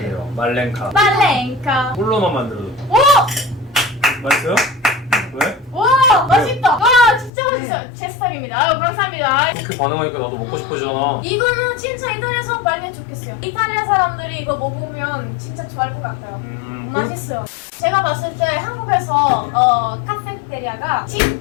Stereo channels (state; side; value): drops out; right; at 7.3 s